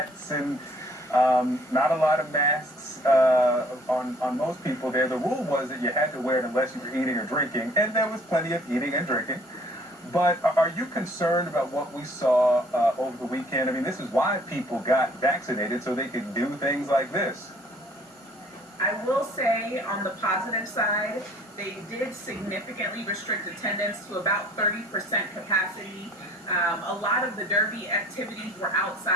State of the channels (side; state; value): both; normal; correlation 0.57